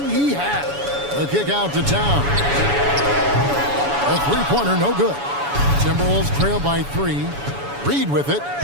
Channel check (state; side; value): late; left; 7.1 ms